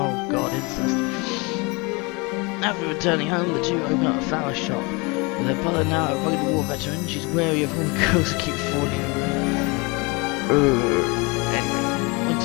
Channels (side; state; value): right; quieter; 28.0 dB